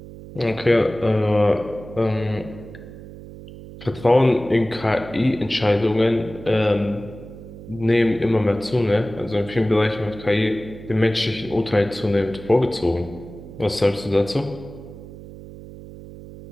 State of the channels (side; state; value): right; noise; hum, 15 dB below the sound